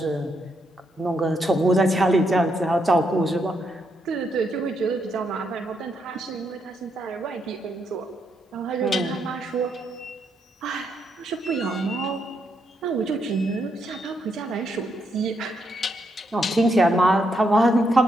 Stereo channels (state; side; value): normal; both; correlation 0.78